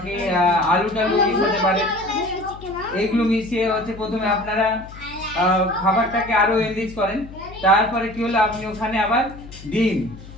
আলু টালু মিশাতে পারেন। এইগুলো মিশিয়ে হচ্ছে প্রথমে আপনারা খাবারটাকে আরো এনরিচ করেন। তারপরে কি হলো? আপনি ওখানে আবার ডিম,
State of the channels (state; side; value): noise; left; hum, 17 dB below the sound